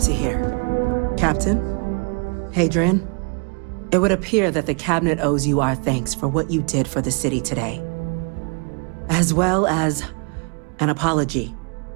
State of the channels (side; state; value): left; quieter; 36.3 dB